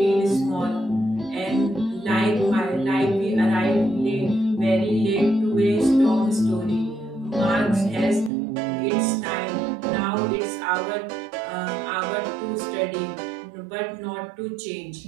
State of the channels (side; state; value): left; drops out; at 8.3 s